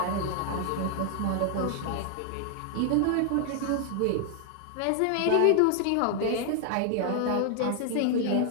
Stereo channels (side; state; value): both; different; correlation 0.00